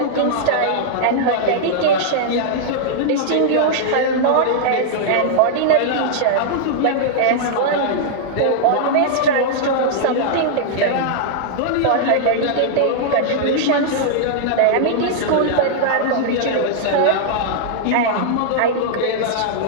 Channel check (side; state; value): both; different; correlation -0.01